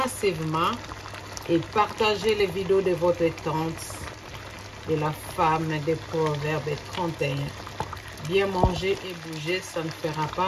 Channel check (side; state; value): both; identical; correlation 1.00